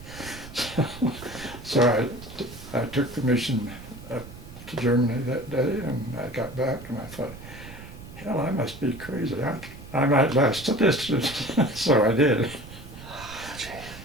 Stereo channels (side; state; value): right; noise; rumble, 15 dB below the sound